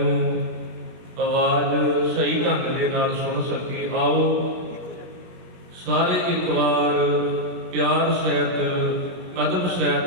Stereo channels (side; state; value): left; late; 17 ms